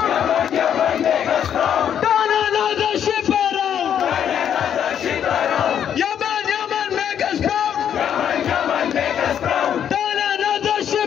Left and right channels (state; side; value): quieter; right; 9.1 dB